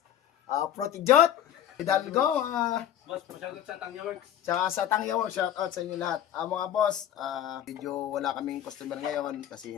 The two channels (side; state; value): right; quieter; 10.7 dB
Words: Protijot, Hidalgo, Boss, shoutout sa Tangya Works. tsaka sa Tangya Works. Shoutout sa inyong lahat. Mga boss, medyo wala kaming customer ngayon kasi